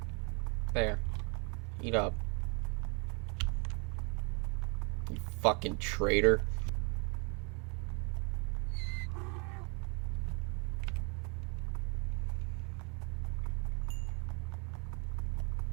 There, eat up, you fucking traitor.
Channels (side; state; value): left; quieter; 32.9 dB